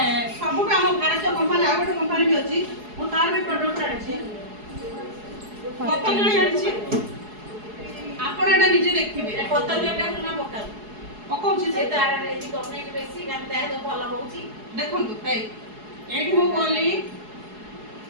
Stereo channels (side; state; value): left; late; 4.7 ms